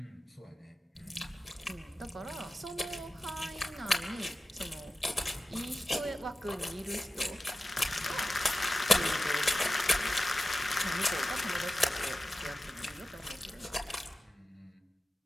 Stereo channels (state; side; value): normal; both; correlation 0.93